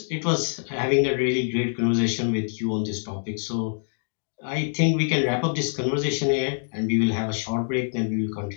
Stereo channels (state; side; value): silent; right; digital silence